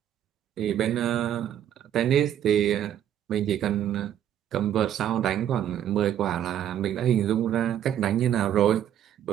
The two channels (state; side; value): quieter; left; 10.4 dB